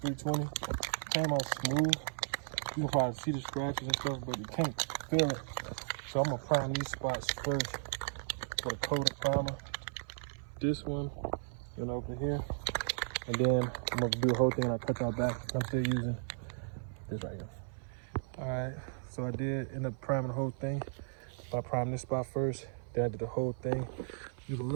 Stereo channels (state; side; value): silent; left; 54 dB below the other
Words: 320, came out smooth. You can probably see the scratches and stuff, but you can't feel it. So I'm gonna prime these spots first with a coat of primer. This one, over here. And then I'm gonna do the whole thing and I'll cut y'all back. I'm still using this right here. All right, so I did end up priming the whole thing. I primed this spot first, then I did the whole thing. You can